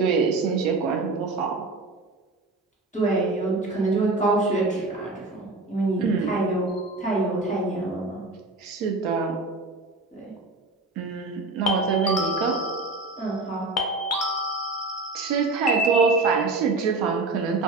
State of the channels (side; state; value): left; quieter; 3.2 dB